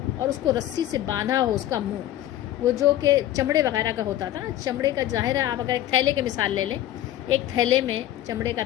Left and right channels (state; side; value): quieter; right; 13.3 dB